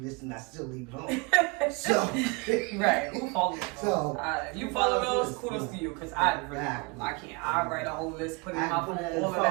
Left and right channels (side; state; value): left; quieter; 29.1 dB